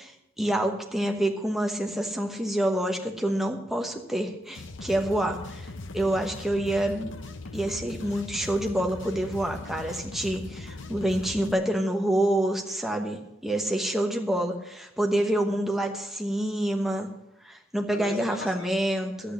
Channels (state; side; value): normal; both; correlation 0.85